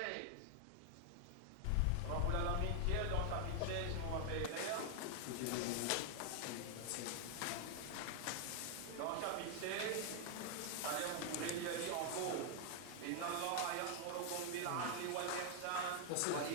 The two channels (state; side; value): different; both; correlation 0.00